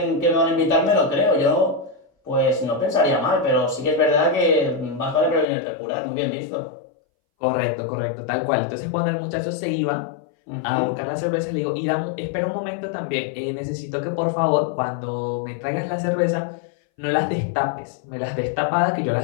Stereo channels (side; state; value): right; drops out; at 5.5 s